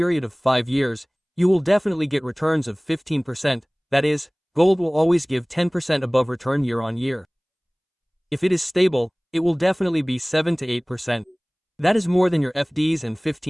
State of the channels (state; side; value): identical; both; correlation 1.00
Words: of 5 years, you will definitely get returns of 15%, that is, gold will always give 10% above return year on year. If it is stable, it will definitely be 7 to 8%. That is more than your FDs and